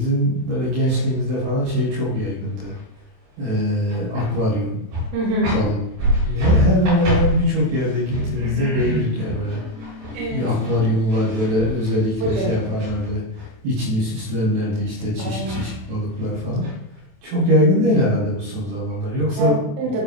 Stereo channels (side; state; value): left; late; 27 ms